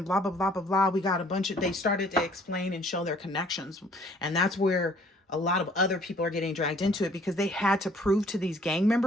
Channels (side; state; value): both; normal; correlation 0.57